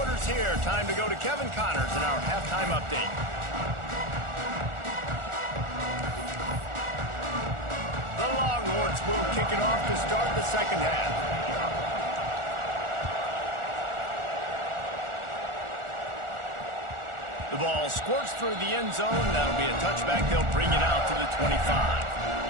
here. Time to go to Kevin Connors in our halftime update. The Longhorns will kick it off to start the second half. The ball squirts through the end zone. That'll be a touchback. They'll bring it out to the 25.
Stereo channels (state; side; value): late; left; 1.4 ms